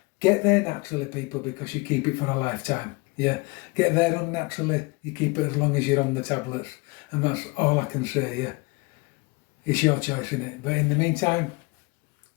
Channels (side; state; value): right; quieter; 26.6 dB